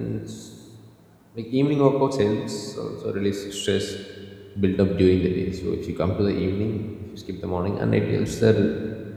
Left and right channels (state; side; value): identical; both; correlation 1.00